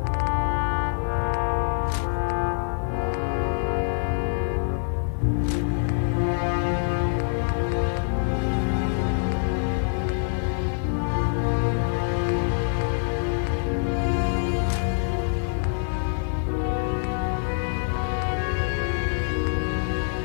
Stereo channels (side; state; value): right; silent; 62 dB below the other